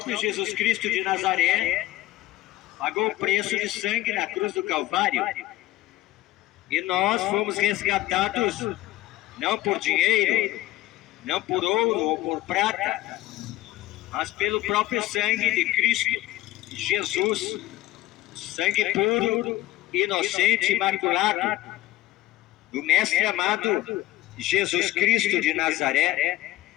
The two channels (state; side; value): quieter; right; 16.3 dB